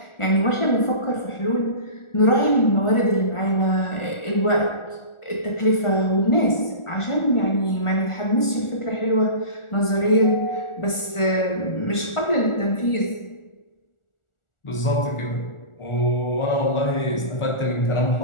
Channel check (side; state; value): right; late; 1.4 ms